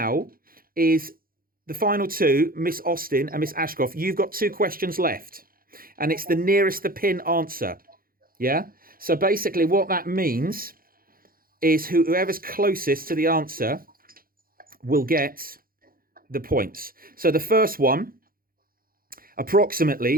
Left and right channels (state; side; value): late; left; 0.42 ms